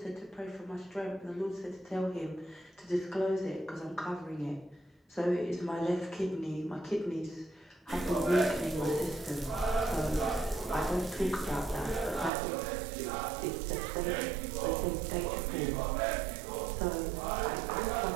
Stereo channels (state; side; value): drops out; left; at 12.3 s